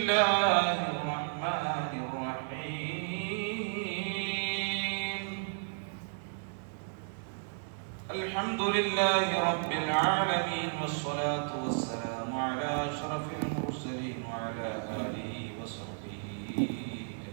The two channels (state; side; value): silent; left; 56 dB below the other